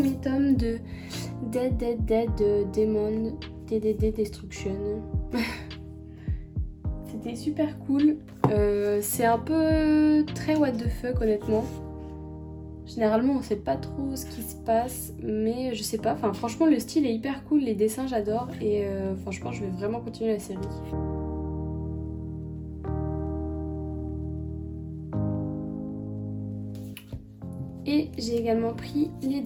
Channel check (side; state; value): both; identical; correlation 1.00